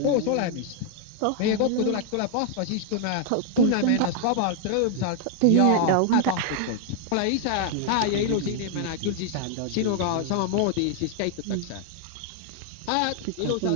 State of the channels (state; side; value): different; both; correlation 0.00